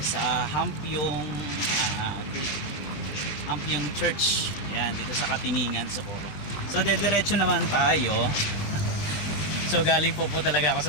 sa Hampiong Hampiong Church. Ayan, dito sa Katiningan, Socorro. So dediretso naman tayo. So galing po talaga ako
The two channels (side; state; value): right; late; 20 ms